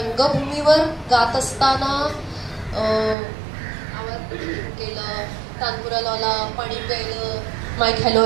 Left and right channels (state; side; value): drops out; left; at 3.2 s